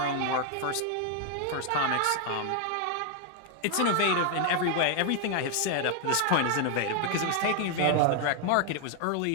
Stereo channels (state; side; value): different; both; correlation 0.01